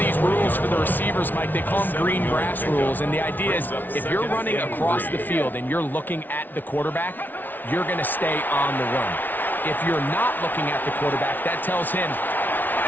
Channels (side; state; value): right; late; 0.086 ms